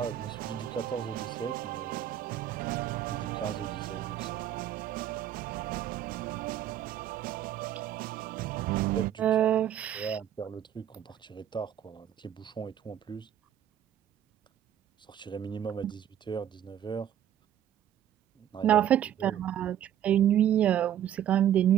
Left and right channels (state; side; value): quieter; left; 10.7 dB